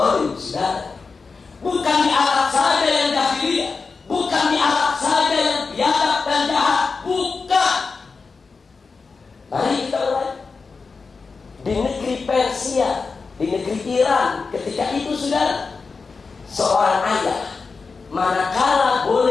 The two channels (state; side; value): quieter; right; 4.6 dB